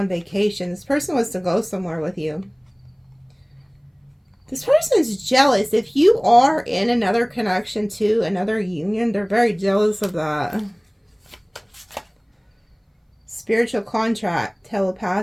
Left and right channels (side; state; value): both; identical; correlation 1.00